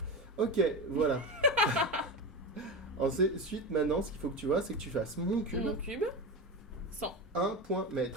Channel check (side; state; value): both; normal; correlation 0.21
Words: Ok, voilà. Ensuite, maintenant, ce qu'il faut que tu vois, c'est que tu fasses mon cube. Mon cube, 100. 1 point